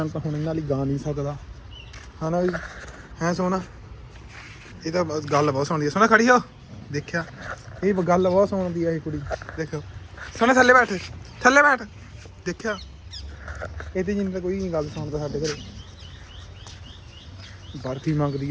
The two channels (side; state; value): both; identical; correlation 1.00